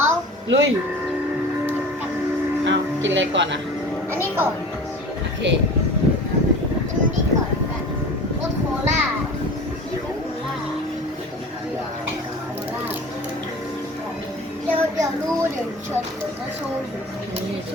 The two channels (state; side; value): normal; both; correlation 0.38